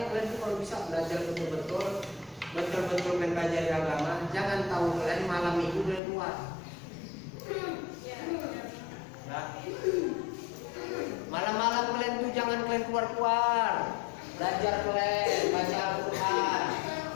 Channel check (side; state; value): right; drops out; at 6.0 s